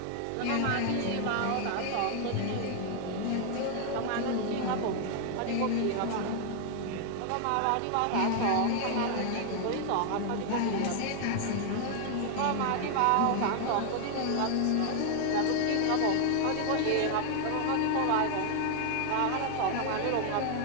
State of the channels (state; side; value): different; both; correlation 0.00